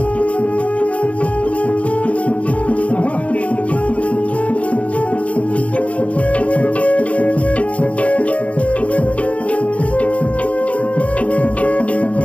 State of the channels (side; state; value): right; late; 0.066 ms